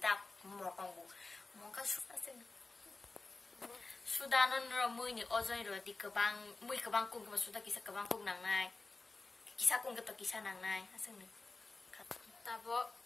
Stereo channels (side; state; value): right; quieter; 3.6 dB